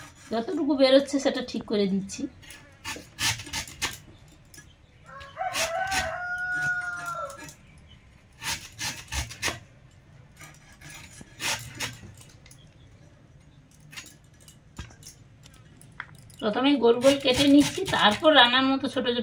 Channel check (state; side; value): identical; both; correlation 1.00